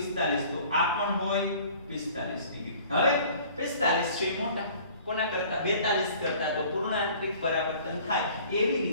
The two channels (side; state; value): both; inverted; correlation -0.50